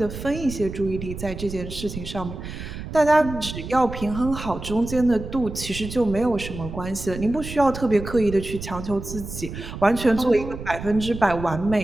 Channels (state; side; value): noise; right; rumble, 9 dB below the sound